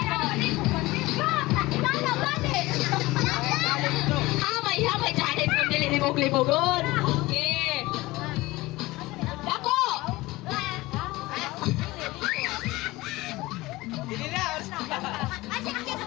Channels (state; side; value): quieter; right; 20.0 dB